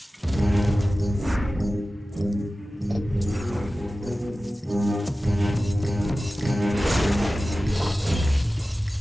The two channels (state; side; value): normal; both; correlation 0.95